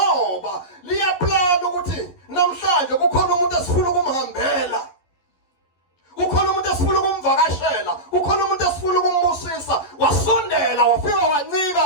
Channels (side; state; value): right; late; 11 ms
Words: liyaplana ukuthi namhlanje kukhona umuntu esifuna ukumhambela. Kukhona umuntu esifuna ukumvakashela, kukhona umuntu esifuna ukumbusisa. Wasondela, wafika wancika,